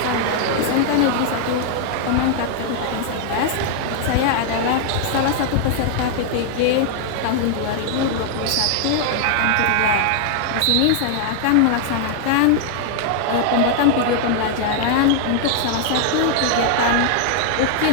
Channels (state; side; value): different; both; correlation 0.00